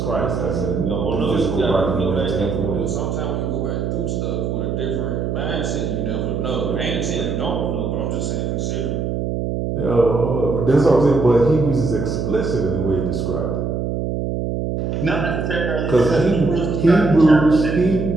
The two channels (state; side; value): noise; right; hum, 2 dB below the sound